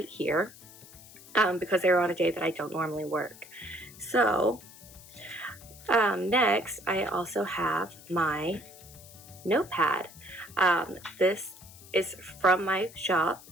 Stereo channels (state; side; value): noise; left; hiss, 20 dB below the sound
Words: here because they're on a day that I don't normally work. So next I also have my notepad. This is from my shop.